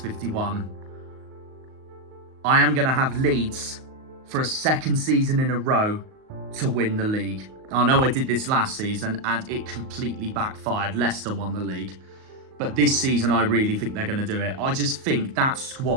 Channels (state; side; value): late; left; 38 ms